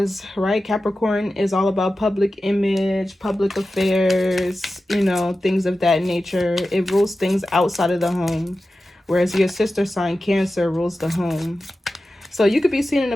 right, Capricorn is all about public image, public affairs, you know, things of that nature. It rules things outside of the home, whereas your sister sign, Cancer, rules the home. So you could be seen in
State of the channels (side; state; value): both; normal; correlation 0.94